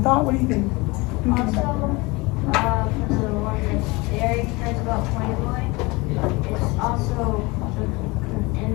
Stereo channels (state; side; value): quieter; right; 24.5 dB